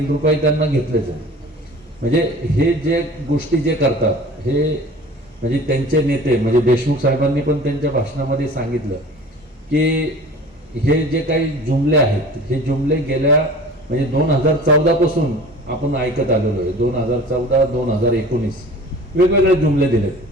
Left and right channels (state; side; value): normal; both; correlation 0.42